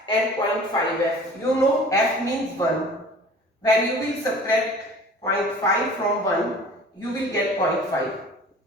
and 0.5f, you know f means 1. When you will subtract 0.5 from 1, you will get 0.5.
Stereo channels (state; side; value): normal; both; correlation 0.44